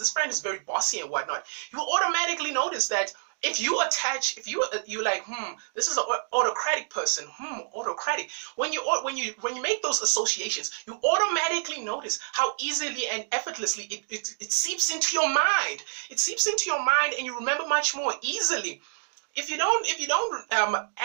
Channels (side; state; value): left; silent; digital silence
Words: friend is very bossy and whatnot. You automatically notice that if you like, this is an autocratic person, autocratic. When you make those associations, you automatically notice how easily and effortlessly it seeps into your mind. It seeps into your mind, and you remember much more easily. If you don't